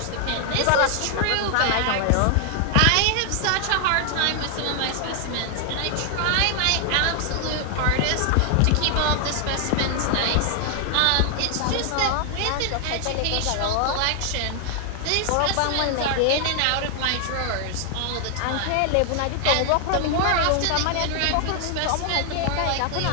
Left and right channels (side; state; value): both; different; correlation 0.00